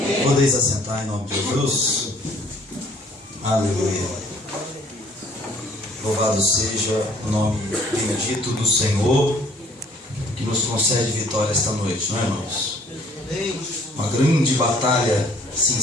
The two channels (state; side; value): normal; both; correlation 0.58